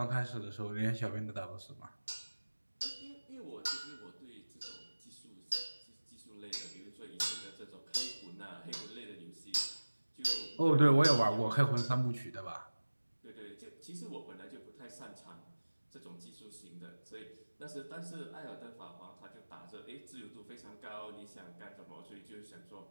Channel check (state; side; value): inverted; both; correlation -1.00